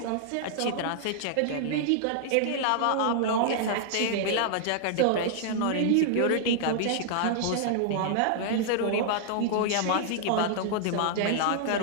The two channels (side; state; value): both; different; correlation -0.01